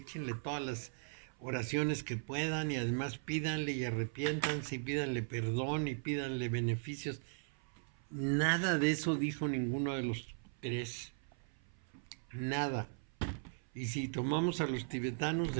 todas las oraciones que puedan y además pídanle y arrepiéntanse y pídanle perdón y pídanle beneficios. Nada de eso dijo ninguno de los 3. Nada. Y si tomamos a los tibetanos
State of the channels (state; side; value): silent; left; 52 dB below the other